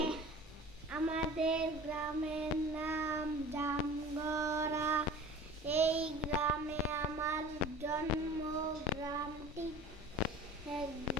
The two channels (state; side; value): normal; both; correlation 0.40